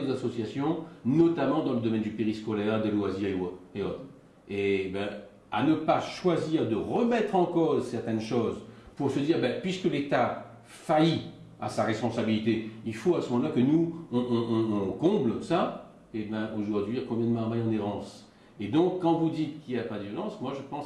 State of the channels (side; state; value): both; identical; correlation 1.00